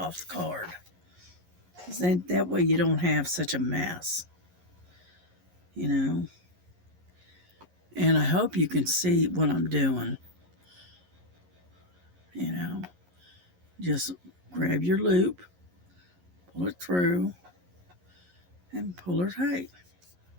the card. Then that way you don't have such a mess, And I hope you can see what I'm doing. Just grab your loop, pull it through, and pull it tight.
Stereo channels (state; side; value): late; left; 11 ms